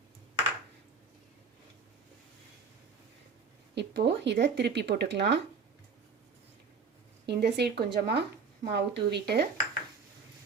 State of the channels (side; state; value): left; quieter; 5.4 dB